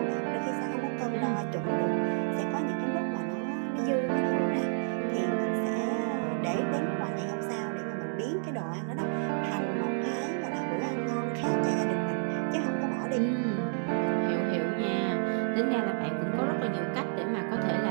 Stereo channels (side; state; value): left; silent; digital silence